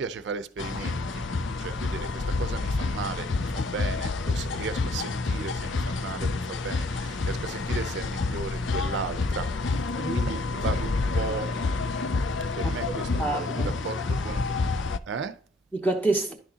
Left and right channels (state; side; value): normal; both; correlation 0.61